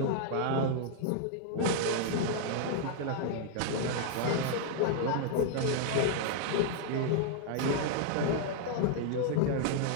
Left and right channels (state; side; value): different; both; correlation 0.00